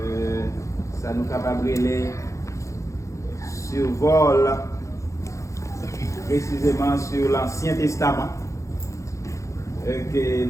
ça nous capable de survol précisément sur l'Ancien Testament. Que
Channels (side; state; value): right; late; 0.15 ms